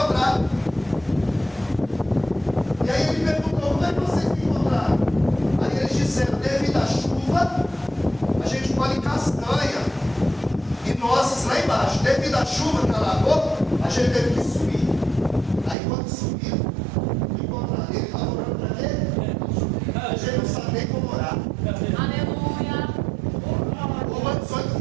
E aí ele perguntou, como é que vocês me encontraram? Aí eles disseram, devido à chuva, a gente colhe castanha e nozes lá embaixo. Devido à chuva que alagou, a gente teve que subir. Aí quando subiu, encontraram. Ele estava orando para ele, a gente não sabe nem como orar. Aleluia. Romanos 8,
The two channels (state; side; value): drops out; left; at 15.8 s